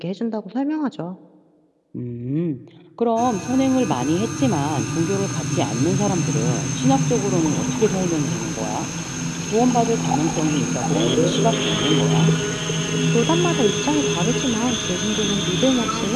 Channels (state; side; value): identical; both; correlation 1.00